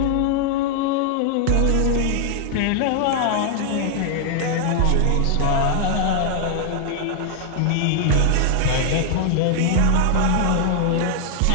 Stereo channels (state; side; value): different; both; correlation 0.00